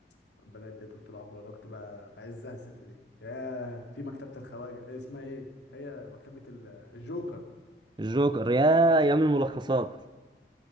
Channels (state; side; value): normal; both; correlation 0.53